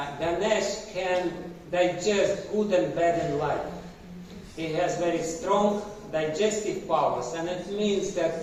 Ganesh can digest good and bad in life. He has very strong digestive powers, and it means that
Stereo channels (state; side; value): identical; both; correlation 1.00